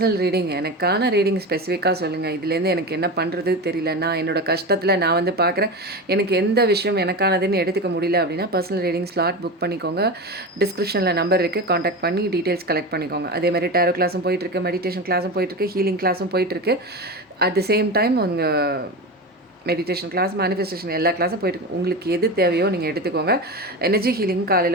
ரீடிங். எனக்கான ரீடிங் ஸ்பெசிஃபிக்காக சொல்லுங்கள். இதுலேருந்து எனக்கு என்ன பண்ணுறது தெரியல, நான் என்னோடய கஷ்டத்தில் நான் வந்து பார்க்குறேன், எனக்கு எந்த விஷயம் எனக்கானதுன்னு எடுத்துக்க முடியல அப்படின்னா பர்சனல் ரீடிங் ஸ்லாட் புக் பண்ணிக்கோங்க. டிஸ்கிரிப்ஷனில் நம்பர் இருக்குது, காண்டாக்ட் பண்ணி டீட்டெயில்ஸ் கலெக்ட் பண்ணிக்கோங்க. அதே மாதிரி டேரோ கிளாஸும் போயிட்டுருக்கு, மெடிடேஷன் கிளாஸும் போயிட்டுருக்கு, ஹீலிங் கிளாஸும் போயிட்டுருக்கு. அட் த சேம் டைம் உங்கள் மெடிடேஷன் கிளாஸ், மேனிஃபெஸ்டேஷன் எல்லா கிளாஸும் போயிட்டு உங்களுக்கு எது தேவையோ நீங்கள் எடுத்துக்கோங்க. எனர்ஜி ஹீலிங்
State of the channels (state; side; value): normal; both; correlation 0.23